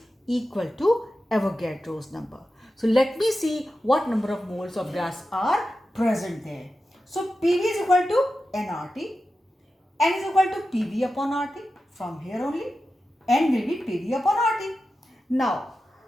equal to Avogadro's number. So let me see what number of moles of gas are present there. So PV is equal to nRT, N is equal to PV upon RT. From here only, N will be PV upon RT. Now,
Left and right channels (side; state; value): both; normal; correlation 0.92